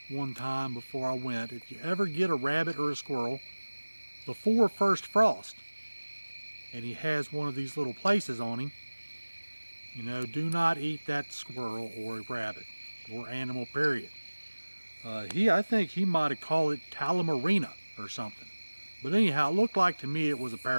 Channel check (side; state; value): both; inverted; correlation -1.00